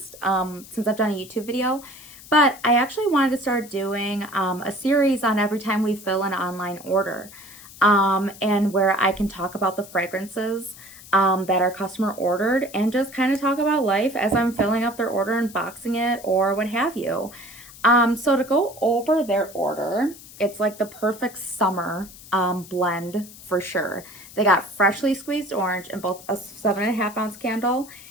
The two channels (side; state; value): left; noise; hiss, 18 dB below the sound